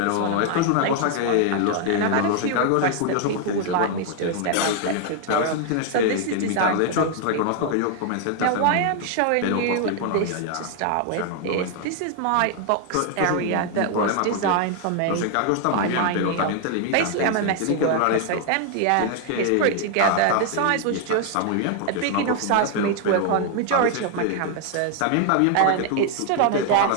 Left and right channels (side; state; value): both; different; correlation 0.00